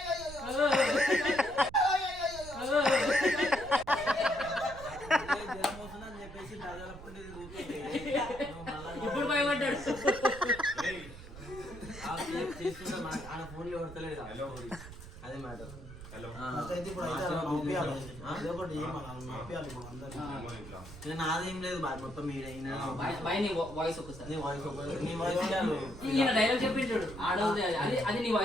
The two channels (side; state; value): right; noise; rumble, 14 dB below the sound